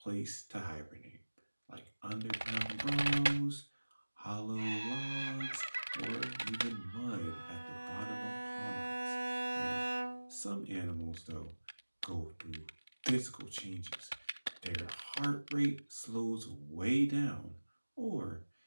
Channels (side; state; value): both; inverted; correlation -1.00